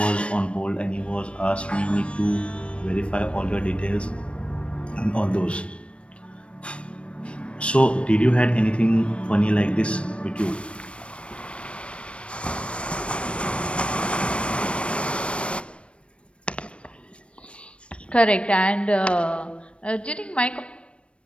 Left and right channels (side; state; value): right; late; 0.060 ms